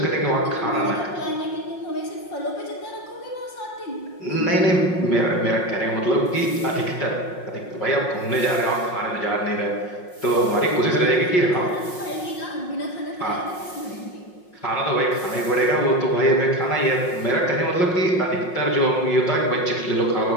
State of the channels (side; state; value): right; late; 5.5 ms